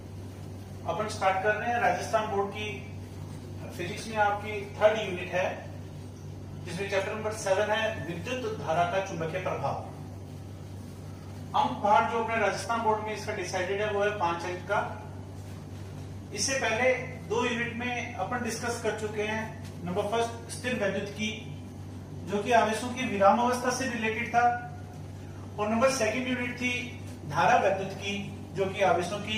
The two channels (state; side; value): identical; both; correlation 1.00